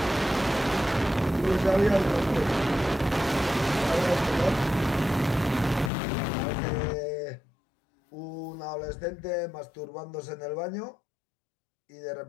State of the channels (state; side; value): drops out; right; at 5.9 s